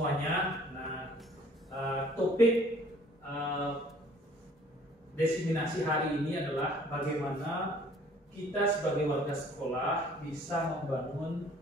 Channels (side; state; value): both; normal; correlation 0.55